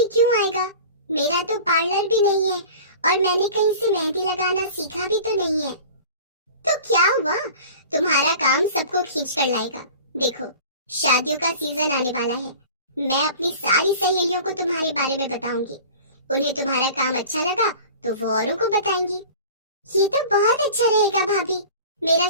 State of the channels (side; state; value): both; inverted; correlation -0.40